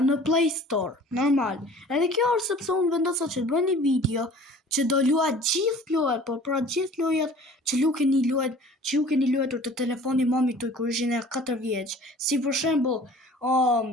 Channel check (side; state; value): both; normal; correlation 0.47